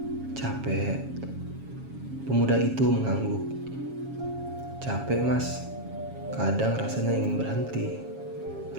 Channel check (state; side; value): late; left; 7.3 ms